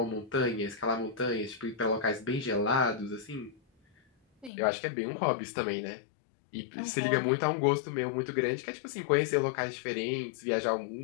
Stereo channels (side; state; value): right; drops out; at 4.5 s